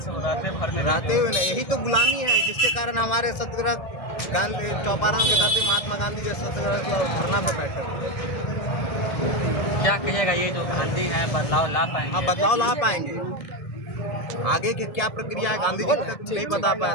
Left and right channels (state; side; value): late; right; 1.6 ms